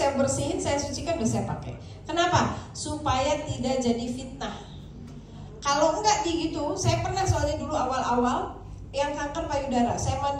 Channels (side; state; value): both; identical; correlation 1.00